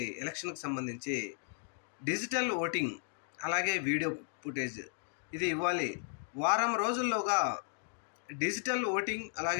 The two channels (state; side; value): silent; right; 54 dB below the other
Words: ఎలక్షన్కి సంబంధించి డిజిటల్ ఓటింగ్ అలాగే వీడియో ఫుటేజ్ ఇది ఇవ్వాలి. వారం రోజుల్లోగా డిజిటల్ ఓటింగ్